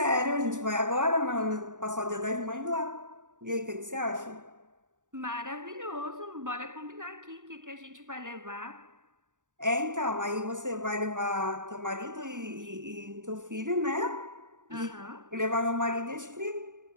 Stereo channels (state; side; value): late; left; 0.87 ms